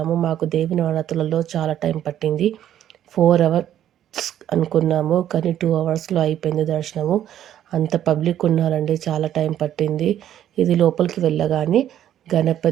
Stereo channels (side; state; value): left; quieter; 11.2 dB